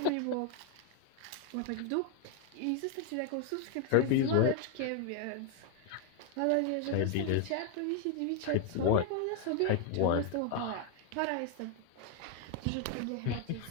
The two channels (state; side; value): different; both; correlation 0.01